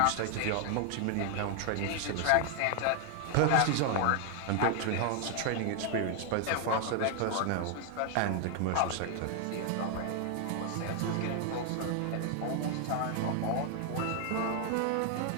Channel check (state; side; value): different; both; correlation 0.00